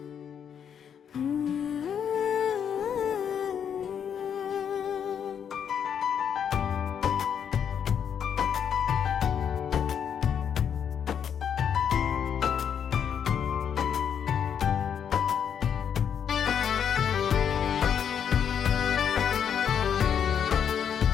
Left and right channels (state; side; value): quieter; right; 8.1 dB